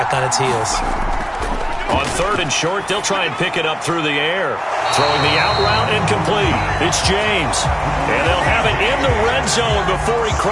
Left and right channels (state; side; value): identical; both; correlation 1.00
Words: on its heels. On 3rd and short, they'll try and pick it up through the air. Throwing the out route incomplete. It's James. And they'll have it in the red zone before he